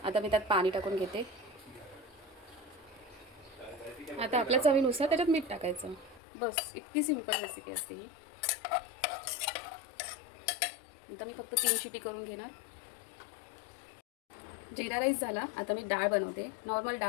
आता मी त्यात पाणी टाकून घेते. आता आपल्या चवीनुसार त्याच्यात मीठ टाकायचं. बस, इतकी सिंपल रेसिपी असते ही. आता मी फक्त 3 शिटी करून घेणार. जिरा राईस झाला. आता मी डाळ बनवते. नॉर्मल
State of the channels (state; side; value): drops out; right; at 6.2 s